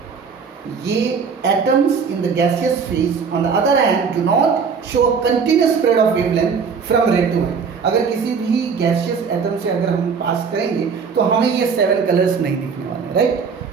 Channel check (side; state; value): left; quieter; 5.8 dB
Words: ये atoms in the gaseous phase on the other hand do not show continuous spread of wavelength from red to white. अगर किसी भी गैसियस एटम से अगर हम पास करेंगे तो हमें ये 7 कलर्स नहीं दिखने वाले, राइट,